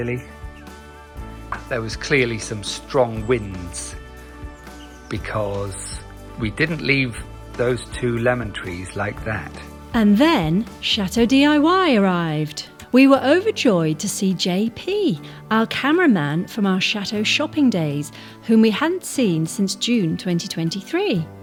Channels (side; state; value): both; identical; correlation 1.00